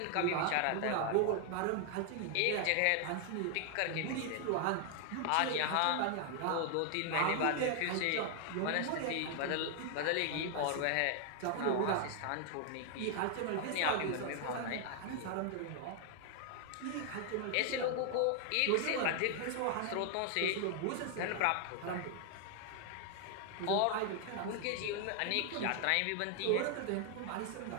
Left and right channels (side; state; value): both; different; correlation 0.00